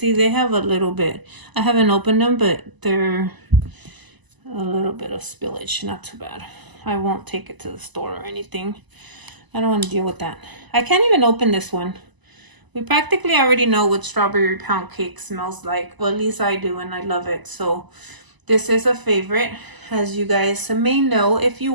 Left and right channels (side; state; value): left; late; 1.0 ms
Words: they have a little bit. I haven't opened them, but they're a little bit of spillage. Not too bad. I won't take it to the store or anything. I don't want to deal with that. I can't even open this one. We practically already know what strawberry pound cake smells like. Well, at least I do, and I love it. So this is a favorite, as you guys may know if you